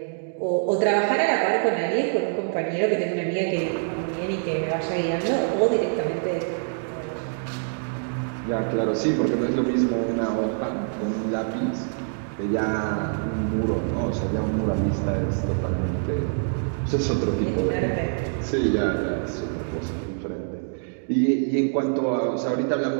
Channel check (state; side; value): silent; left; digital silence